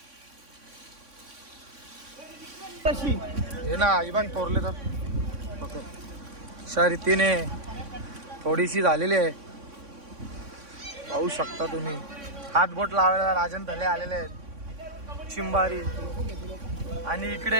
हे ना ही बाग तोरले तर अशा रीतीने थोडीशी झालेली आहे. पाहू शकता तुम्ही. हात बोट लावायला राजन थले आलेले आहेत. चिंबारी आणि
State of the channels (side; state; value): left; late; 3.6 ms